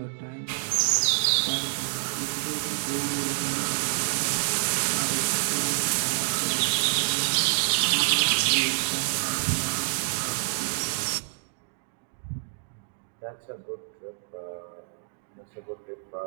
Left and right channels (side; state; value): left; silent; digital silence